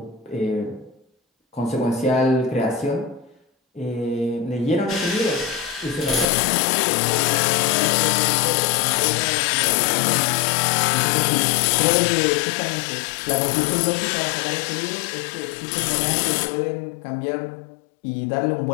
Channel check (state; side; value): drops out; right; at 6.2 s